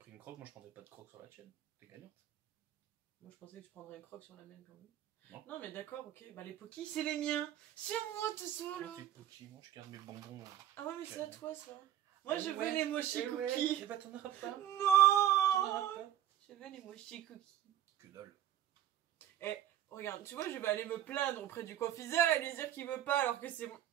une croque, moi je prendrais pas de croque sur la tienne. T'es gagnante. Moi je pensais que tu prendrais une croque sur la mienne quand même. Non, non mais d'accord, ok. Bah les Poki c'est les miens. C'est moi tout ça là. Tes Poki, moi je garde mes bonbons. Ah ouais mais c'est à toi ça. Moi je veux les mochi cookies. Et bah t'en auras pas. Non. Je veux les mochi cookies. Que dalle. Eh, regarde, tu vois je vais aller me plaindre auprès du confiseur et lui dire qu'il veut pas alors que c'est moi.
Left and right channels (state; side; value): quieter; left; 11.5 dB